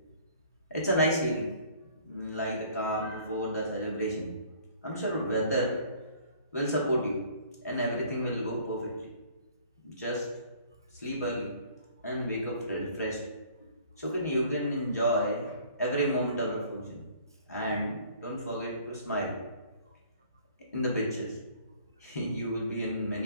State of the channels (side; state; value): both; inverted; correlation -0.54